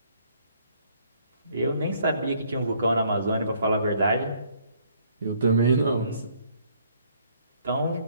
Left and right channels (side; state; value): both; inverted; correlation -0.64